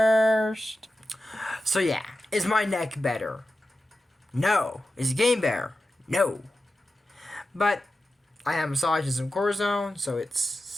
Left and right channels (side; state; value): both; normal; correlation 0.92